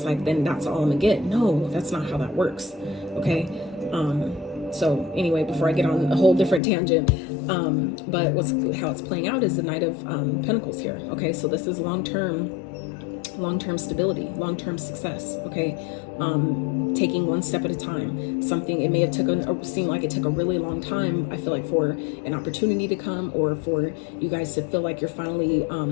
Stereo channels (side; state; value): right; drops out; at 6.6 s